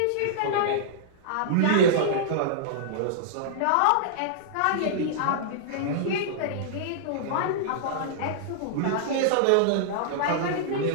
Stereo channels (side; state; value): both; different; correlation -0.02